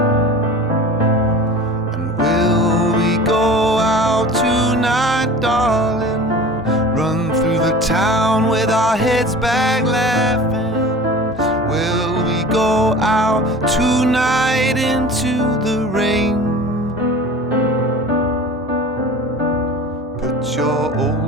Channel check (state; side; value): normal; both; correlation 0.39